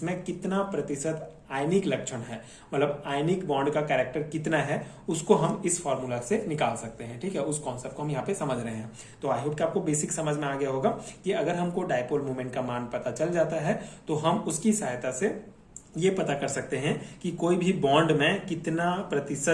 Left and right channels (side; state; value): both; identical; correlation 1.00